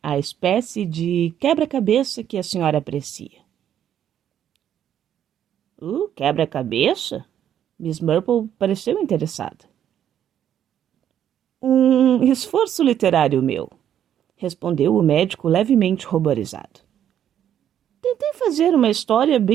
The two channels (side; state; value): left; quieter; 10.1 dB